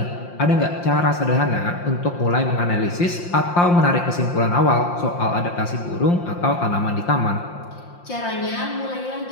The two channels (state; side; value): late; right; 5.7 ms